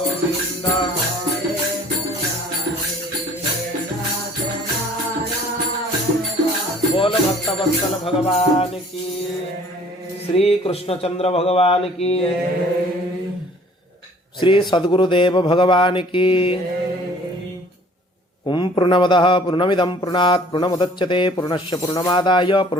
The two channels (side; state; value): both; normal; correlation 0.54